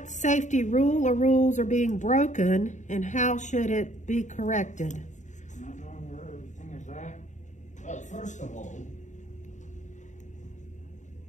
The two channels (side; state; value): right; late; 0.35 ms